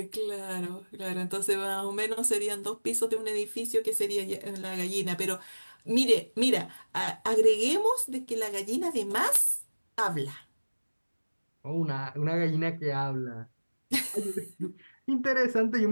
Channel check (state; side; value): inverted; both; correlation -1.00